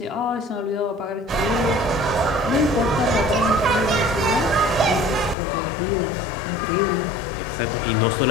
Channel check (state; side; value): drops out; right; at 5.4 s